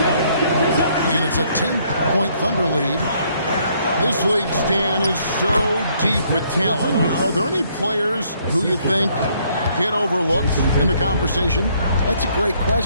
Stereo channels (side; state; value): both; inverted; correlation -0.67